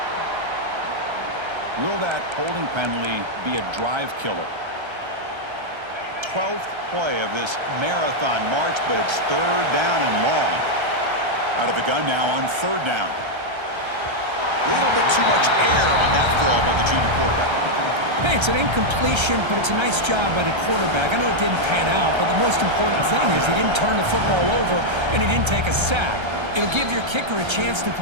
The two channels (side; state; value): left; late; 1.3 ms